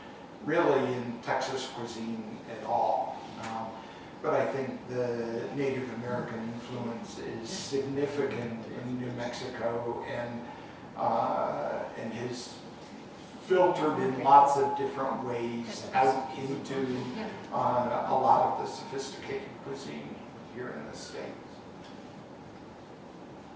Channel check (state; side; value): identical; both; correlation 1.00